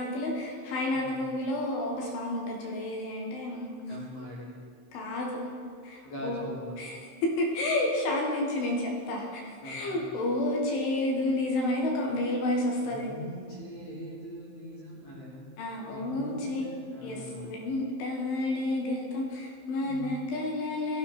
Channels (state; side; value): late; right; 15 ms